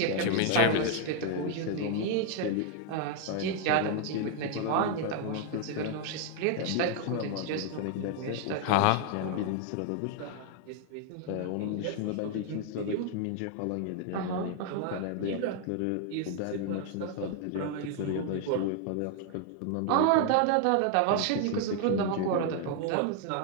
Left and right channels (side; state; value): both; different; correlation 0.00